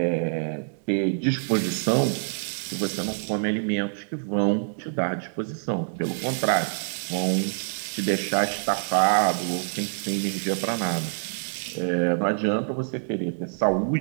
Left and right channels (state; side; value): silent; left; digital silence